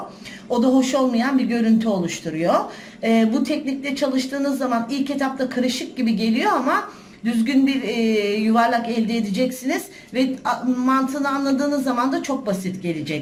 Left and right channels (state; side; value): identical; both; correlation 1.00